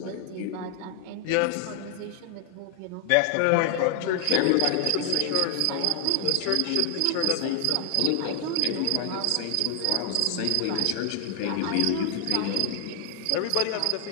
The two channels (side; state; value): both; different; correlation 0.00